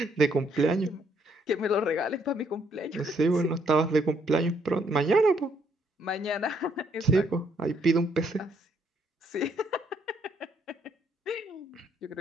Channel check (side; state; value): both; normal; correlation 0.70